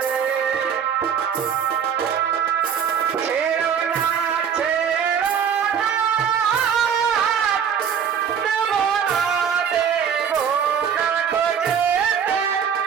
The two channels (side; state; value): left; quieter; 7.7 dB